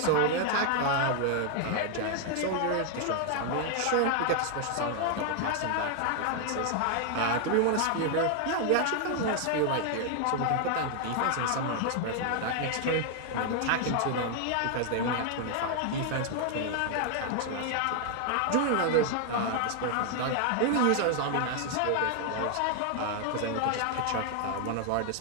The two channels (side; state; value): both; different; correlation 0.00